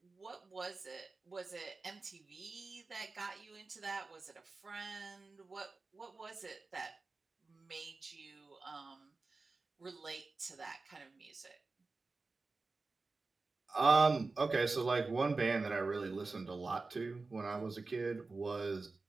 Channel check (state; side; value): quieter; left; 3.8 dB